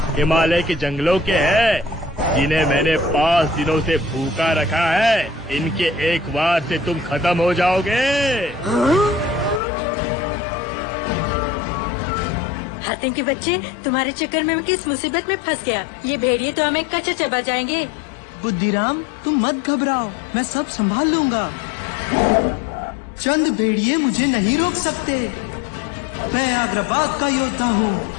हिमालय के जंगलों के हैं, जिन्हें मैंने 5 दिनों से भूखा रखा है। इनके एक बार से तुम खत्म हो जाओगे। हातिम के बच्चे, तुम्हारे चक्कर में मैं किस मुसीबत में फंस गया। ये भेड़िए तो हमें कच्चा चबा जाएंगे। बुद्धिराम, तुम मत घबराओ, मैं सब संभाल लूंगा। चंद भेड़िए मुझे नहीं रोक सकते। मैं आग्राबाद का योद्धा हूँ।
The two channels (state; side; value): drops out; right; at 9.6 s